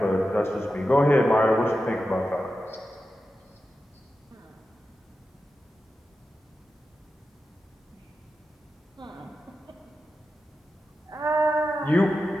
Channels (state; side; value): normal; both; correlation 0.91